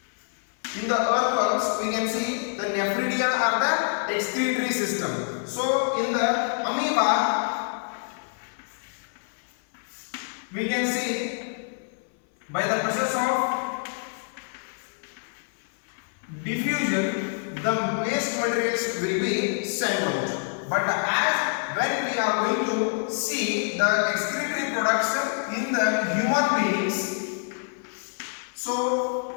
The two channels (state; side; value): silent; right; 61 dB below the other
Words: In the earthworms we can see the nephridia are the excretory system. So in the amoeba we can see by the process of diffusion the waste materials will be sent out. But as when we are going to see the excretory products in the human beings, so